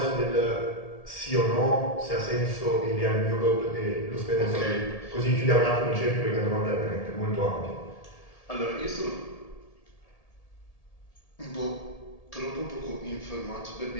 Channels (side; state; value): right; late; 1.7 ms